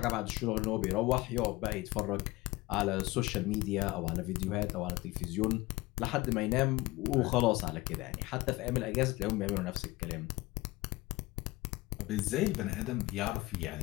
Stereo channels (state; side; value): quieter; right; 20.3 dB